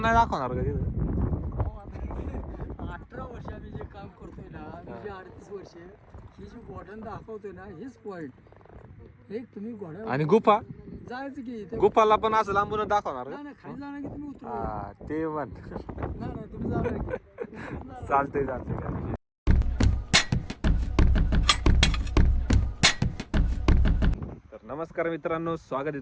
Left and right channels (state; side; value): identical; both; correlation 1.00